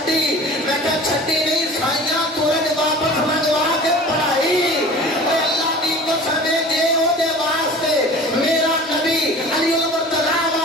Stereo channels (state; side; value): normal; both; correlation 0.41